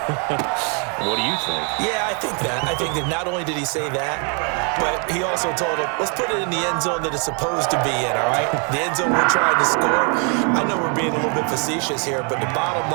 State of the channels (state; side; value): quieter; left; 37.7 dB